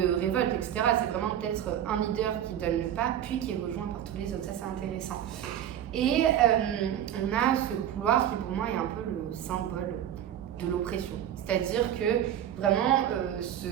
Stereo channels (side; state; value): left; quieter; 10.6 dB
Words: révolte, etc. C'est vraiment peut-être un leader qui donne le pas, puis qui est rejoint par tous les autres. Ça, c'est intéressant. Et on a ce couloir qui pour moi est un peu le symbole de l'oppression. C'est-à-dire que vraiment,